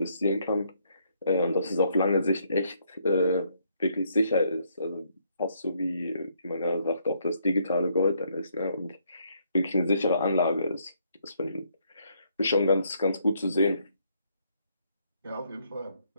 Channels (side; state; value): both; inverted; correlation -0.71